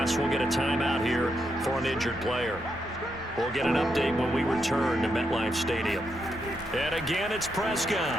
we'll get a timeout here for an injured player. We'll get an update when we return to MetLife Stadium. And again, it's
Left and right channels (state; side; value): normal; both; correlation 0.81